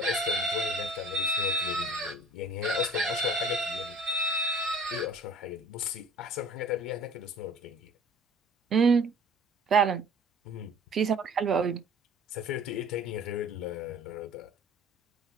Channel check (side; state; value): both; normal; correlation 0.48